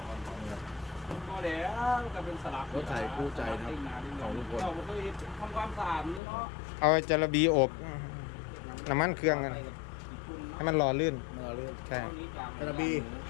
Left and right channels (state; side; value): drops out; right; at 6.2 s